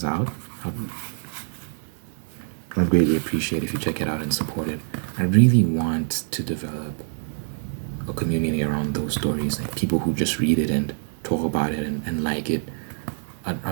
out, I'd greatly appreciate if you check it out and support it. I really want to develop a community around those stories, like people who just read it and talk about it and like it.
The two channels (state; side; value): silent; left; digital silence